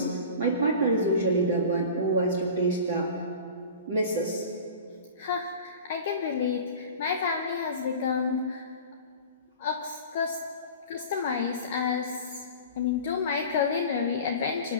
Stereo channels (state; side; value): inverted; both; correlation -0.37